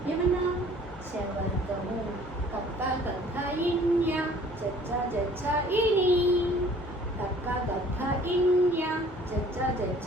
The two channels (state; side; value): normal; both; correlation 0.53